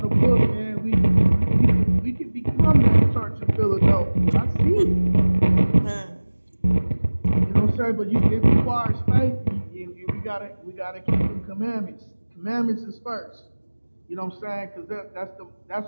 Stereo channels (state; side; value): inverted; both; correlation -1.00